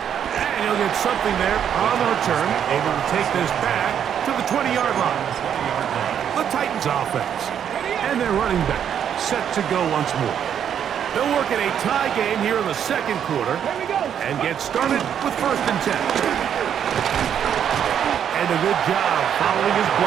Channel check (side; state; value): left; quieter; 8.8 dB